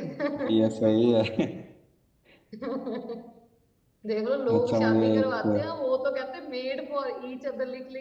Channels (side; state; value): both; identical; correlation 1.00